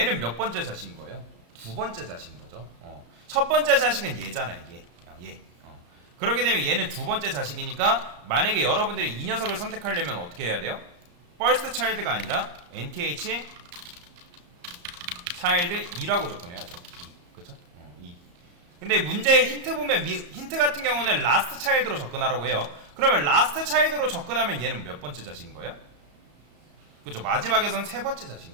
몇 번째 자식인 거예요? 두 번째 자식인 거죠. 첫 번째 자식은 얘잖아요, 얘. 그렇게 되면 얘는 두 번째 자식이니까 만약에 여러분들이 이 녀석을 선택하려면 어떻게 해야 돼요? first child가 아니라 nth child 2라고 접근해야죠. 그쵸? 2. 근데 문제의 힌트 보면 힌트 같은 경우는 last child로 접근하라고 해요. 그러면 last child로 접근하면 얘는 몇 번째 자식인 거예요? 그죠? 마지막에선 세 번째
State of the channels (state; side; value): late; left; 34 ms